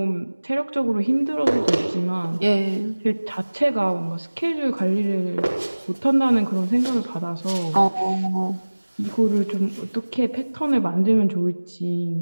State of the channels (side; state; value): both; inverted; correlation -1.00